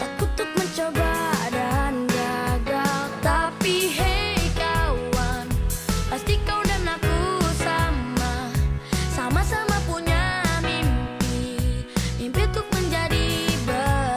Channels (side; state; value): both; identical; correlation 1.00